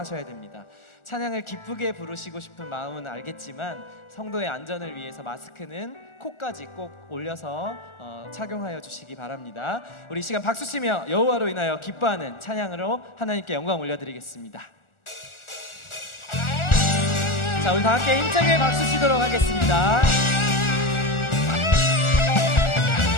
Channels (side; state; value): right; late; 1.4 ms